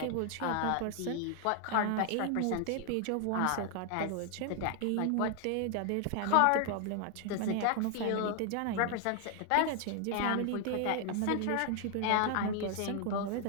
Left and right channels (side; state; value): both; different; correlation 0.00